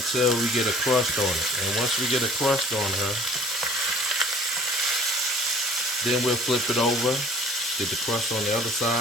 we get a crust on it. And once we get a crust on her, then we'll flip it over, get the crust on the other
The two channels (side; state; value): both; normal; correlation 0.51